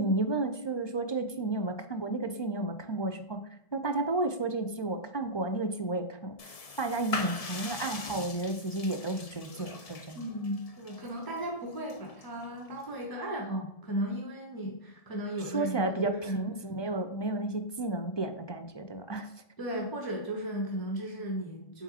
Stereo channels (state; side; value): late; right; 1.7 ms